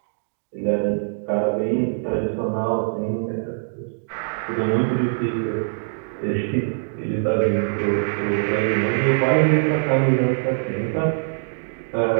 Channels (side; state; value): left; silent; digital silence